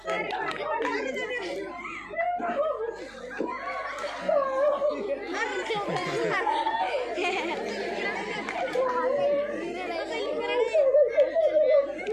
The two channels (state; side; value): noise; right; hum, 26 dB below the sound